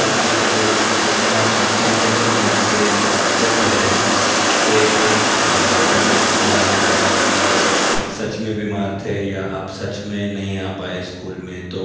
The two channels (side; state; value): both; identical; correlation 1.00